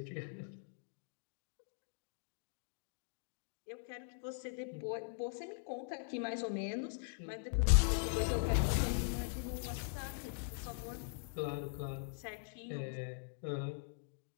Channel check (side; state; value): right; silent; digital silence